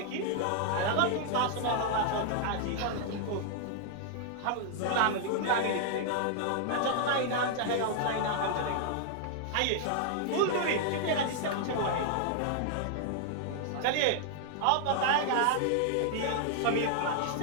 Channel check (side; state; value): both; different; correlation -0.01